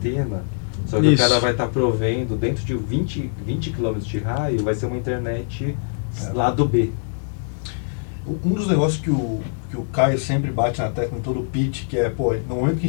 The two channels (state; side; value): silent; right; 64 dB below the other